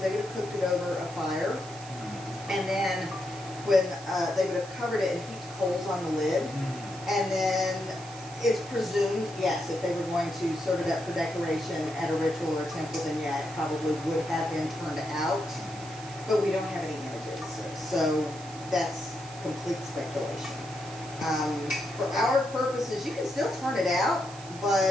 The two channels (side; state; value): right; noise; hiss, 17 dB below the sound